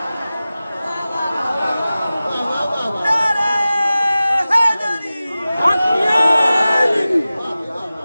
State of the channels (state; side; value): inverted; both; correlation -0.96